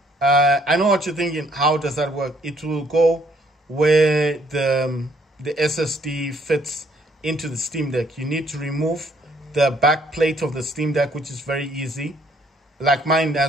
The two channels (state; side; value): normal; both; correlation 0.66